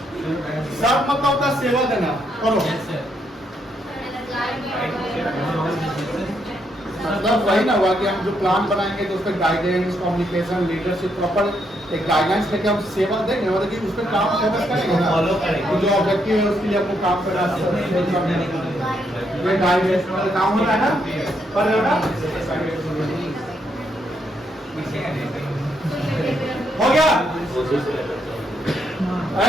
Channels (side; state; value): both; normal; correlation 0.76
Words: सब मतलब होता है सेवा देना, करो मतलब वही ना हुआ कि हम जो प्लान बनाएंगे तो उसमें गाइडेंस, कम्युनिकेशन, लीडरशिप, प्रॉपर एक गाइडलाइंस लेके हम सेवा देंगे, मतलब कि उस पर काम फोकस करेंगे ना, Follow करेंगे। जो ऑब्जेक्टिव है उसके लिए आपको काम करना है, ये गाइडेंस वाला काम होता है ना, पर होगा हो गया